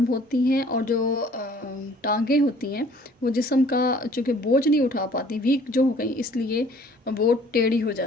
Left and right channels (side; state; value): both; normal; correlation 0.54